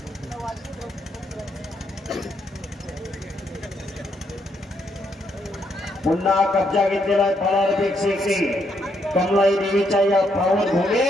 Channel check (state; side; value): normal; both; correlation 0.75